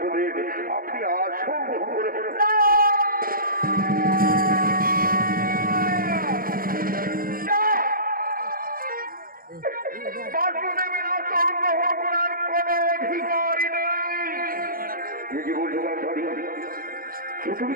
আপনি আসন গ্রহণ করুন। বাসুদেবের আসন গ্রহণ করার কোন অধিকারই নেই। কি বলছো তুমি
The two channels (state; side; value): late; left; 0.42 ms